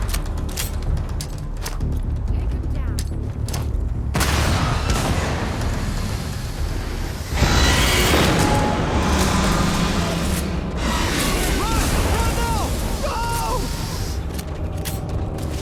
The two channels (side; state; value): both; identical; correlation 1.00